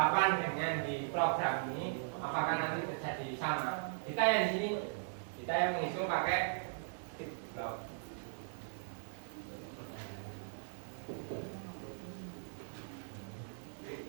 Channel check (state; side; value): silent; left; digital silence